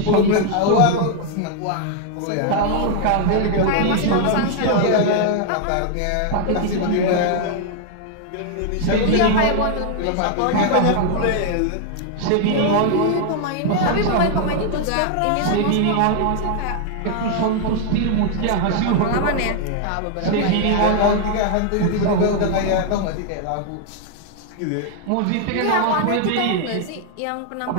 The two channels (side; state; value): both; different; correlation 0.00